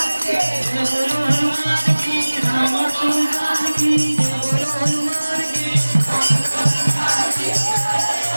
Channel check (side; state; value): both; inverted; correlation -1.00